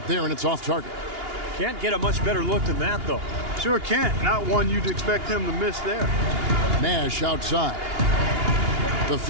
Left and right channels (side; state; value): left; late; 2.8 ms